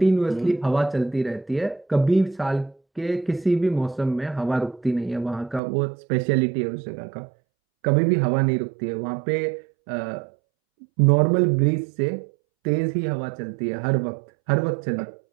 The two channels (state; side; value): drops out; left; at 5.6 s